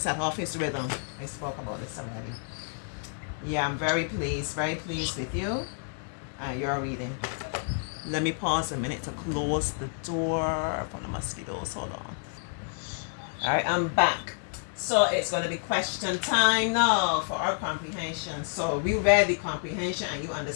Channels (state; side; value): silent; right; digital silence